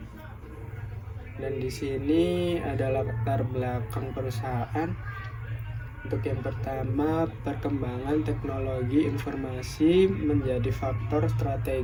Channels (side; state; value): both; identical; correlation 1.00